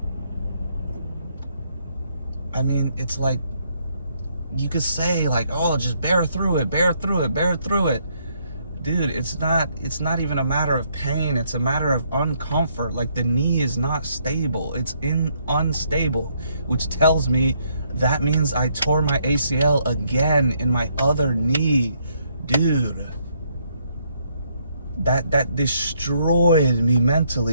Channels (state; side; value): inverted; both; correlation -0.71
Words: I mean, it's like, you could say, like, oh, just bear through it, bear through it, bear through it. Dude, it's not even a matter of pain. It's a matter of uncomfort. Like, the knee is not stable. It's unstable, which tells me that means I tore my ACL again in my other knee. Dude, that destroyed me